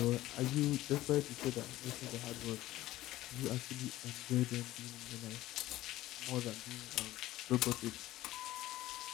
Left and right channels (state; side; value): quieter; right; 15.8 dB